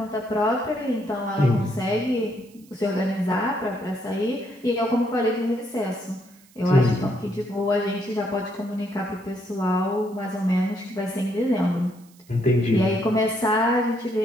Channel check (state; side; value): noise; right; hiss, 28 dB below the sound